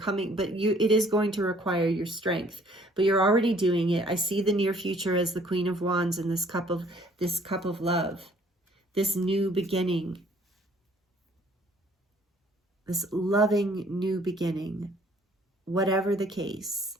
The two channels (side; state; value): both; normal; correlation 0.58